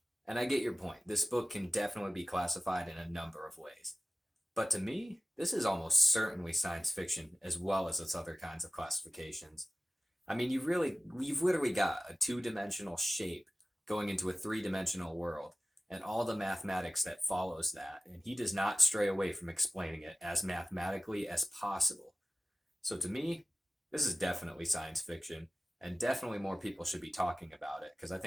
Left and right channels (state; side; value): normal; both; correlation 0.96